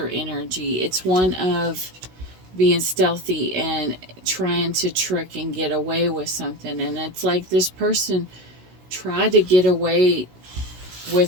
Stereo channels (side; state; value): left; late; 16 ms